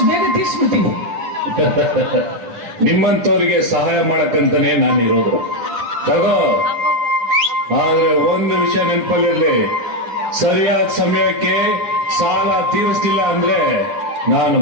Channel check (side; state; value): left; late; 10 ms